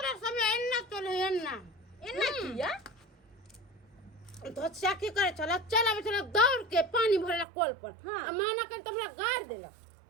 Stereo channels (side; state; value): left; drops out; at 7.5 s